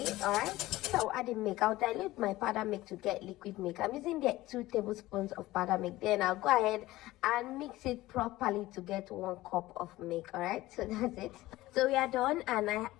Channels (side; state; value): right; quieter; 17.4 dB